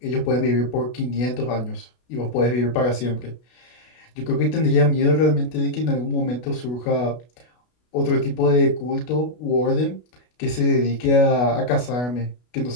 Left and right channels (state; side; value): late; right; 33 ms